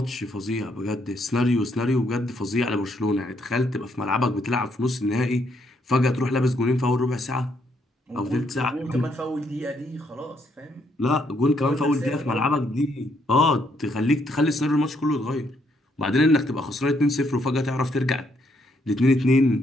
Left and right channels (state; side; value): normal; both; correlation 0.73